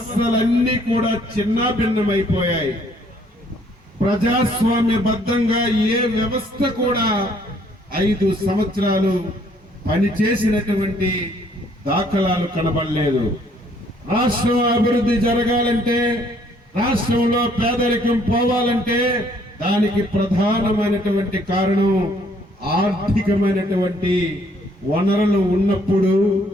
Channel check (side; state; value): both; normal; correlation 0.64